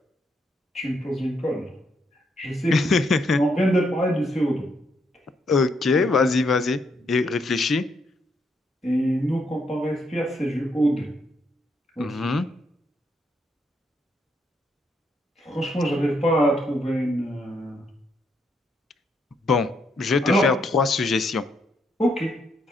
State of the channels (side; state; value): both; normal; correlation 0.76